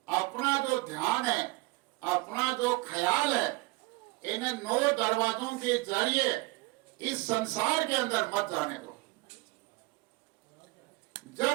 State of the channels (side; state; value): left; quieter; 23.2 dB